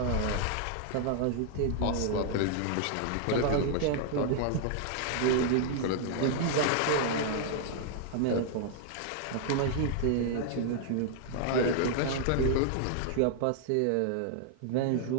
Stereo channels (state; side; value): different; both; correlation -0.01